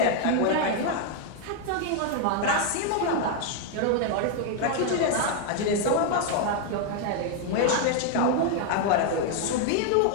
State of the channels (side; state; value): both; different; correlation 0.00